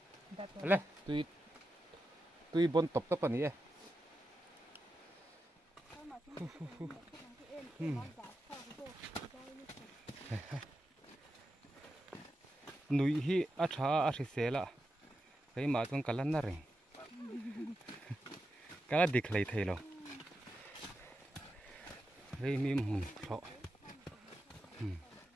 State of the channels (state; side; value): normal; both; correlation 0.89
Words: lên túi bon top các bạn nhỉ núi hi acha sela cái mà tuần cả lần này cái là địch lấy thấy rồi cái mìm hùn sọ